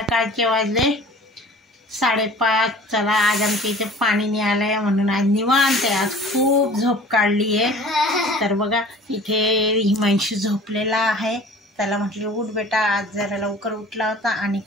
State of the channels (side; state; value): both; normal; correlation 0.45